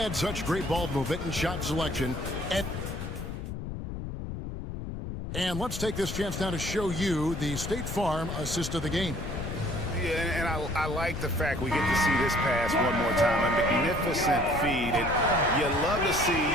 such great ball movement and shot selection. And let's take this chance now to show you the State Farm assist of the game. Yeah, and I like the fact we get to see this pass one more time. A magnificent feed, and you love to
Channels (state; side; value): noise; left; rumble, 6 dB below the sound